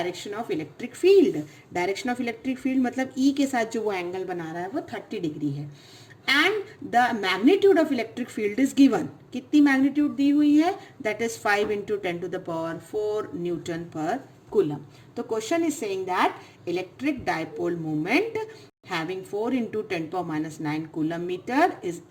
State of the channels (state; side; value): identical; both; correlation 1.00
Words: of electric field. Direction of electric field मतलब E के साथ जो वो एंगल बना रहा है वो 30 डिग्री है। And the magnitude of electric field is given, कितनी मैग्नीट्यूड दी हुई है, that is 5 into 10 to the power 4 newton पर कूलम। तो question is saying that electric dipole moment having 4 into 10 power minus 9 coulomb meter is